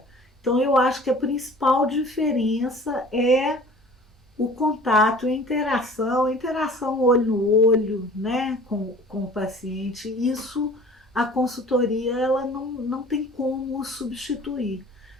Então, eu acho que a principal diferença é o contato, a interação olho no olho, né, com o paciente. Isso a consultoria ela não tem como substituir.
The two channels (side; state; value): both; normal; correlation 0.46